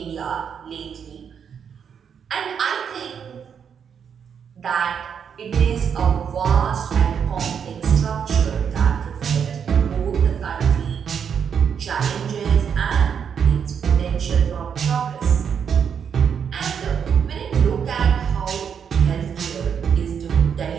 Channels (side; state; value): left; quieter; 7.4 dB